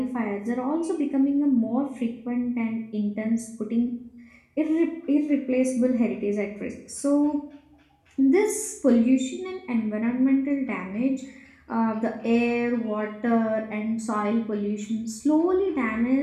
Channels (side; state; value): both; identical; correlation 1.00